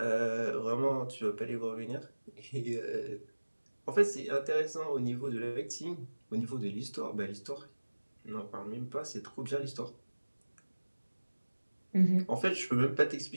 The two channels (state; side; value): inverted; both; correlation -1.00